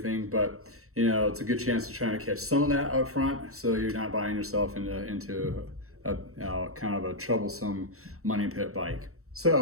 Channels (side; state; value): left; late; 0.64 ms